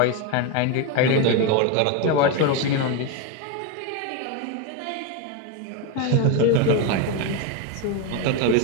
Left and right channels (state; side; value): different; both; correlation 0.03